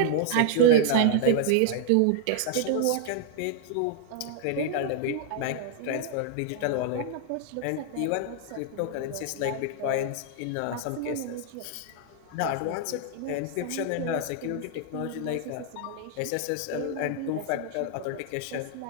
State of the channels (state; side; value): different; both; correlation 0.00